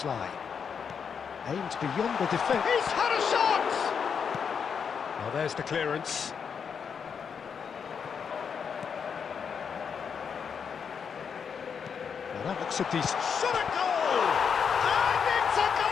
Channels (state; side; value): quieter; right; 6.7 dB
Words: Aimed beyond the defence. He's had a shot! Well, there's the clearance. Well, that looks a decent... Shot at goal! And it's a